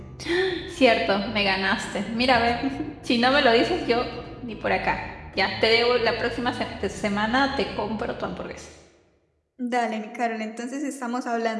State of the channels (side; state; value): both; identical; correlation 1.00